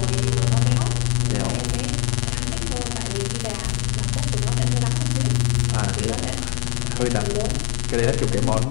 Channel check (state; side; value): quieter; right; 31.2 dB